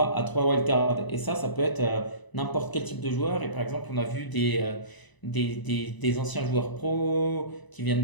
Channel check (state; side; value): late; right; 1.0 ms